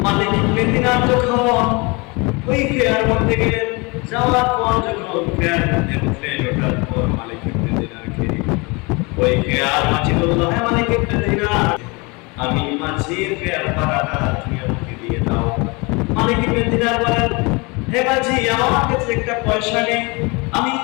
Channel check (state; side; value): quieter; right; 27.7 dB